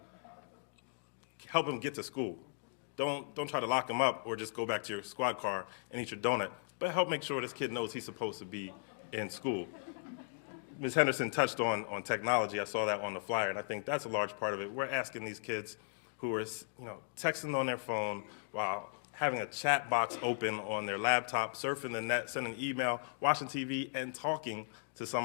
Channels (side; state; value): right; silent; digital silence